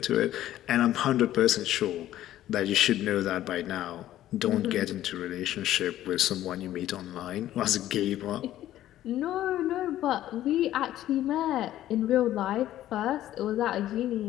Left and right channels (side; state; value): right; quieter; 13.3 dB